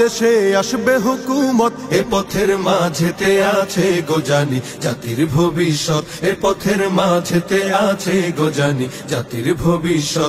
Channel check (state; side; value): identical; both; correlation 1.00